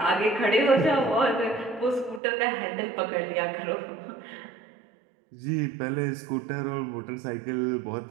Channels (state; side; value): drops out; left; at 2.2 s